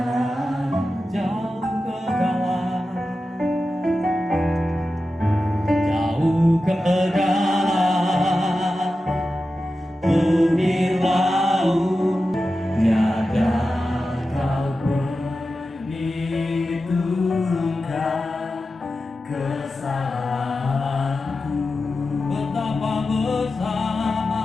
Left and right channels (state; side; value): normal; both; correlation 0.92